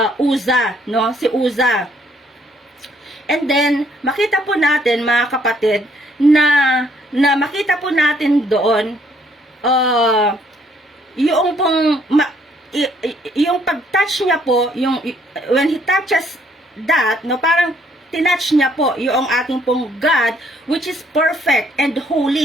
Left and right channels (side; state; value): both; normal; correlation 0.66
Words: Uza, no? Si Uza. And then, makita po natin, mga kapatid, na makita po natin doon, yung pong, yung pag-touch niya po, when he touches that, no, parang tinouch niya po yung ating pong God, which is perfect and